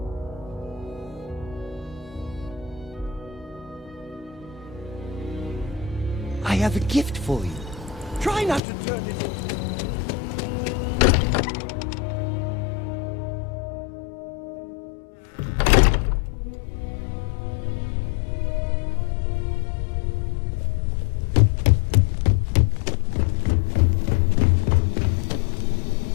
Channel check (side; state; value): right; drops out; at 8.6 s